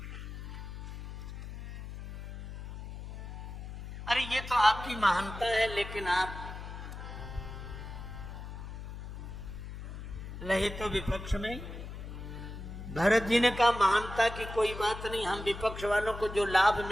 अरे ये तो आपकी महानता है, लेकिन आप रहे तो विपक्ष में। भरत जी ने कहा महानता की कोई बात नहीं, हम विपक्ष वालों को जो लाभ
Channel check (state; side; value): noise; left; hum, 9 dB below the sound